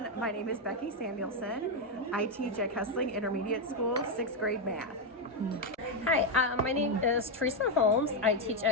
my name is Becky Samuelson. I teach at Kessling Intermediate School, 6th grade math. Hi, my name is Teresa Holmes. I teach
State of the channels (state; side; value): normal; both; correlation 0.04